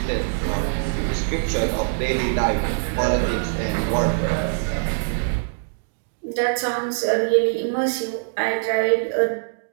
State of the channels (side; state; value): left; silent; digital silence